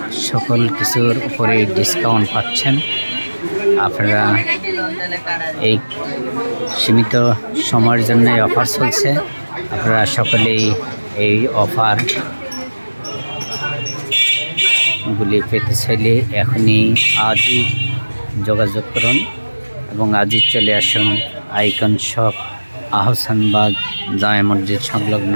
সকল কিছুর উপরে ডিসকাউন্ট পাচ্ছেন। আপনারা এই সীমিত সময়ের জন্য অফার চলছে। আপনারা সকলেই এই অফার গুলি পেতে চাইলে এখনই আজই যোগাযোগ করুন এবং আজই চলে আসুন আইকন শপ আহসানবাগ জামে মসজিদ সংলগ্ন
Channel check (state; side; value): inverted; both; correlation -1.00